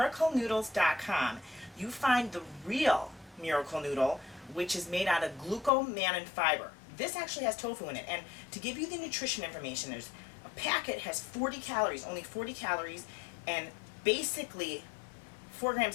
you find the real miracle noodle, which is made out of glucomannan fiber. This actually has tofu in it. And to give you the nutrition information, there's a packet has 40 calories, only 40 calories, and basically 4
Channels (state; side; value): drops out; right; at 5.7 s